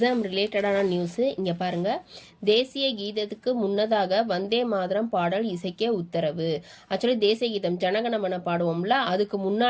ரிலேட்டடான நியூஸு. இங்கே பாருங்கள், தேசிய கீதத்துக்கு முன்னதாக வந்தே மாதரம் பாடல் இசைக்க உத்தரவு. ஆக்சுவலி தேசிய கீதம் ஜனகணமன பாடுவோம்ல, அதுக்கு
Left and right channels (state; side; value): identical; both; correlation 1.00